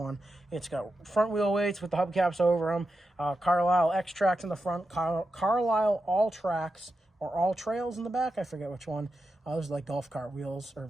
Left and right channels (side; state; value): both; normal; correlation 0.89